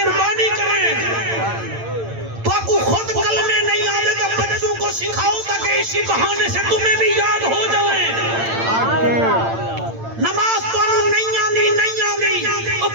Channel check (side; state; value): left; late; 8.8 ms